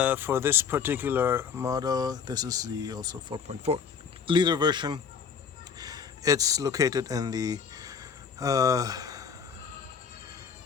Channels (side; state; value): right; quieter; 6.5 dB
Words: for this particular model, this is the also 4.4 liter version. It's located in the